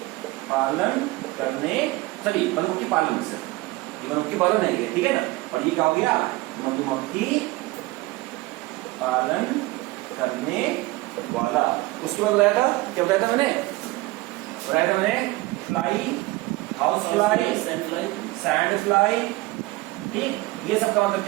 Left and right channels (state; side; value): quieter; left; 20.5 dB